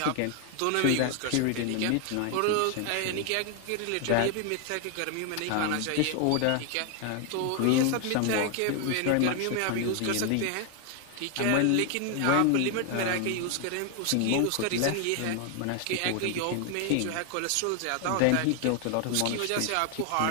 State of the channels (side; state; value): both; different; correlation 0.00